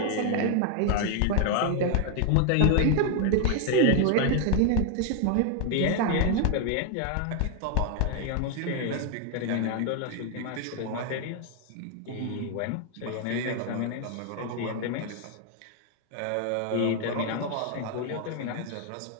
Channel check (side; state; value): both; different; correlation 0.00